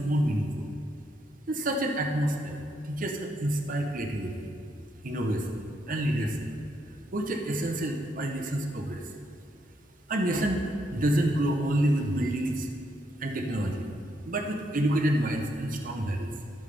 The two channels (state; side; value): normal; both; correlation 0.76